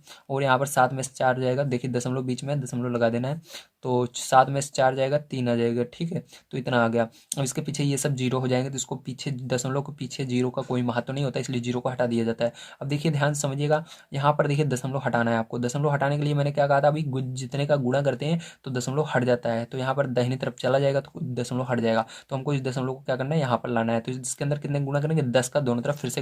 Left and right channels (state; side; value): identical; both; correlation 1.00